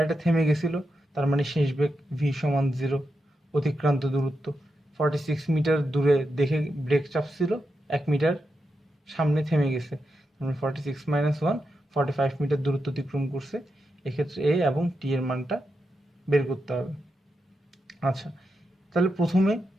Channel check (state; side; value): normal; both; correlation 0.87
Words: থেমে গেছিল, তার মানে শেষ বেগ ভি সমান 0, অতিক্রান্ত দূরত্ব 46 মিটার দূরে দেখে ব্রেক চাপছিল, 1 মিটার সামনে থেমে গেছে, মানে 46 মাইনাস 1 45 মিটার দূরত্ব অতিক্রম করছে। এক্ষেত্রে এ এবং টি এর মানটা বের করতে হবে। আচ্ছা, তাহলে প্রথমে